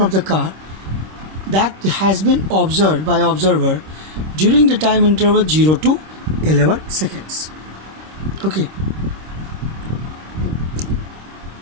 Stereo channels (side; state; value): left; late; 26 ms